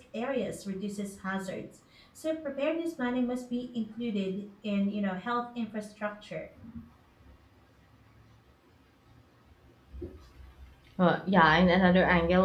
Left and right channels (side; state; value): both; identical; correlation 1.00